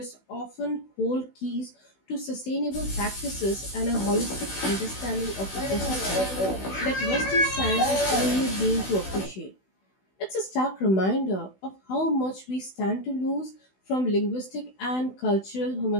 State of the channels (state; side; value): late; right; 16 ms